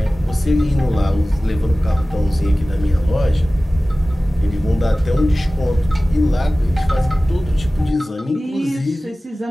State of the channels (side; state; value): both; normal; correlation 0.97